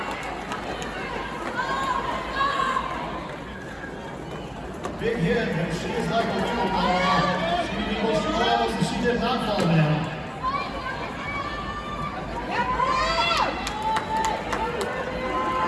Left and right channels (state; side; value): identical; both; correlation 1.00